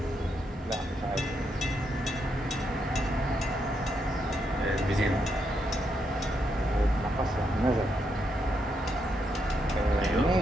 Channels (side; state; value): both; normal; correlation 0.80